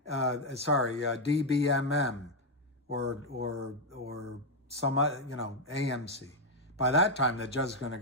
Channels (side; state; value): both; normal; correlation 0.01